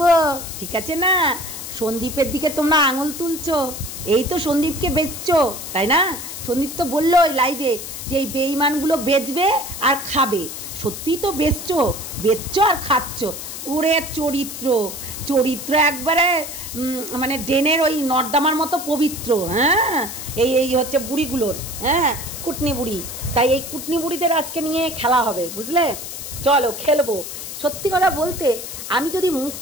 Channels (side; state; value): left; noise; hiss, 9 dB below the sound